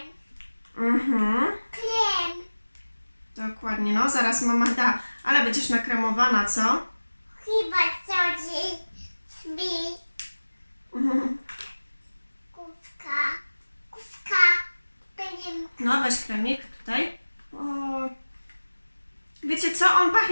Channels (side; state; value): both; inverted; correlation -1.00